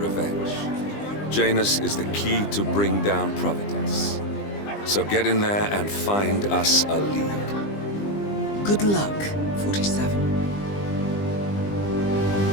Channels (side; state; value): right; late; 20 ms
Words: Janus is the key to bring down Providence. So get in there and find us a lead. Good luck, 47.